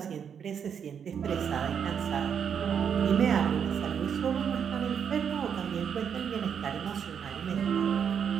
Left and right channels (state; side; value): quieter; left; 7.6 dB